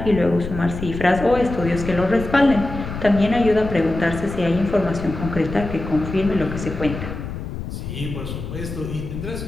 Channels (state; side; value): noise; left; rumble, 8 dB below the sound